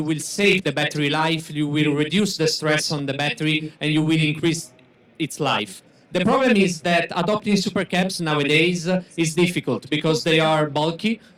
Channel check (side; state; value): both; identical; correlation 1.00